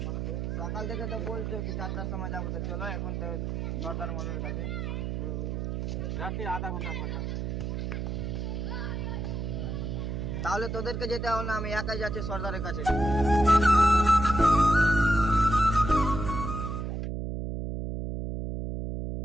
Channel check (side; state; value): right; noise; hum, 3 dB below the sound